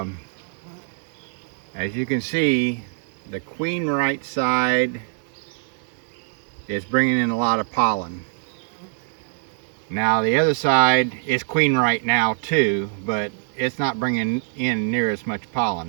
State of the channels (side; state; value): left; silent; 63 dB below the other